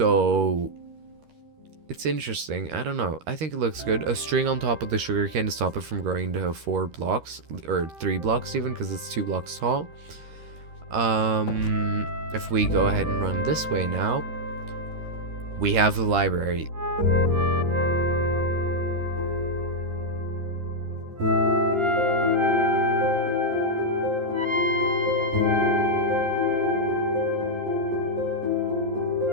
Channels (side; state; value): left; late; 13 ms